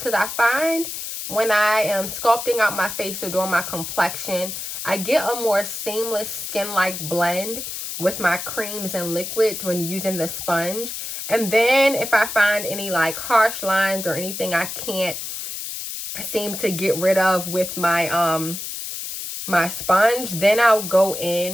I find when I am sculpting out my face or doing my complexion, I get a more seamless skin-like blend with my creams and liquids when using the sponge. And then if I find any like harsh lines or anything I can't seem to get rid of with my my sponge, then I'll go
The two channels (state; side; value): noise; left; hiss, 7 dB below the sound